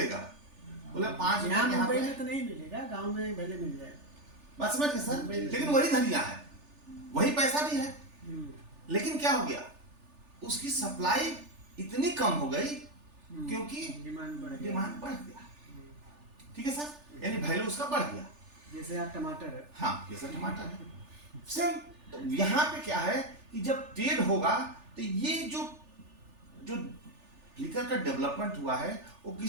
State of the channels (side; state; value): left; late; 3.4 ms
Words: बोले 5 रुपए यहाँ यहाँ मुंबई पे। में तो नहीं मिलेगा, गांव में भले मिल जाए। बात समझ गए सर? लेकिन वही धनिया है, वही पैसा भी है, लेकिन क्या हो गया? उसकी सप्लाई इतनी कम हो गई क्योंकि डिमांड बढ़ गया। ठीक है सर? यानी वैल्यू उसका बढ़ गया। जैसे आप टमाटर है, हाँ जैसे टमाटर है सेम। तो यहाँ पे क्या है कि जब ट्रेड होगा तो ये जो फ्लिकर का डेवलपमेंट हुआ है वो